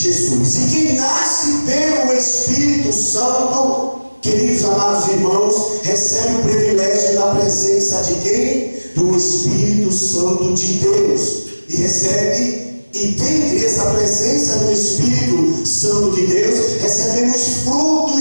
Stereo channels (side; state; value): both; inverted; correlation -1.00